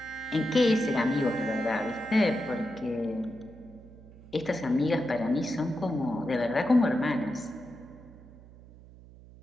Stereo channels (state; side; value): noise; right; hum, 20 dB below the sound